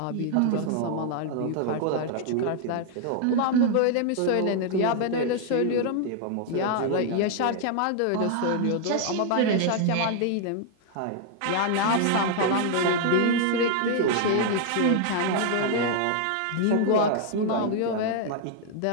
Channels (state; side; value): different; both; correlation 0.00